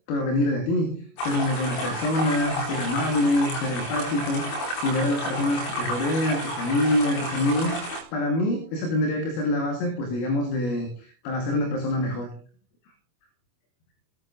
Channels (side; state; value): right; late; 25 ms